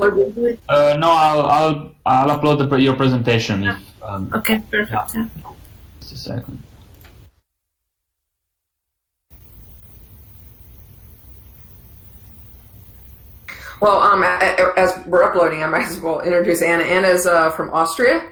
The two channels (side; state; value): both; identical; correlation 1.00